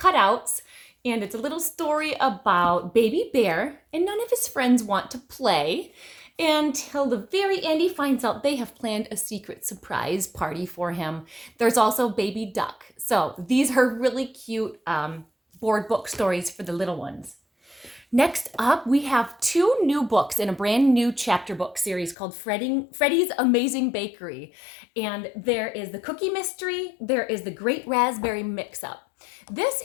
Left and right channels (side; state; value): right; drops out; at 22.2 s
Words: And it's a little story about Baby Bear, and none of his friends want to play until the very end he finds out they have planned a secret surprise party for him. There's also Baby Duck. So these are really cute board book stories for the little ones. Next up, we have two new books in a brand new chapter book series called Freddy's Amazing Bakery. And there is the Cookie Mystery, there is the Great Raspberry Mix-Up. This